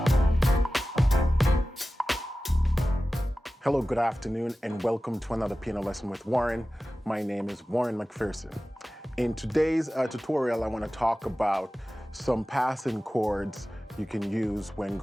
good afternoon, and welcome to another piano lesson with Warren. My name is Warren McPherson. In today's tutorial, I want to talk about some passing chords you can use when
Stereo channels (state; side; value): normal; both; correlation 0.95